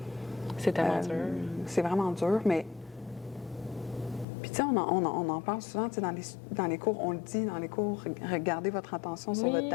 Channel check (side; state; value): right; drops out; at 4.2 s